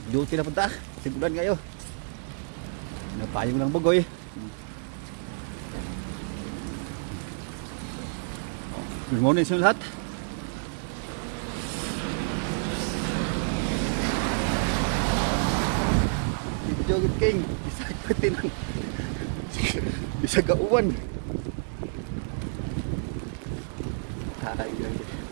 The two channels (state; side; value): silent; left; digital silence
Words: Duty na punta. Sigulan kayo. Napayong lang bugoy. Good morning sa lahat. Joget king. Isa katin. Isa gauwan.